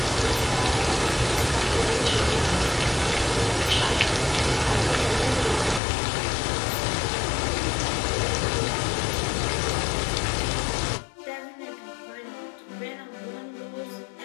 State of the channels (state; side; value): drops out; right; at 5.8 s